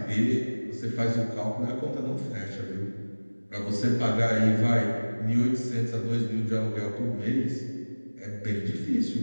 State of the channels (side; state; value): both; inverted; correlation -1.00